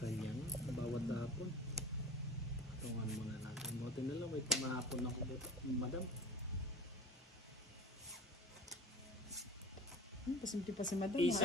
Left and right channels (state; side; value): normal; both; correlation 0.37